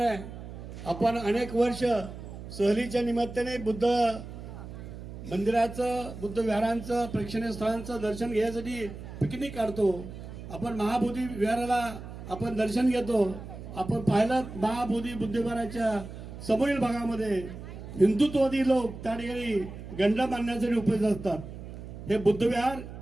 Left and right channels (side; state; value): right; noise; hum, 12 dB below the sound